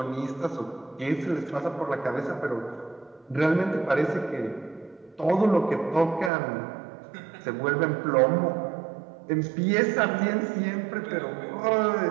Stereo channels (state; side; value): drops out; left; at 6.3 s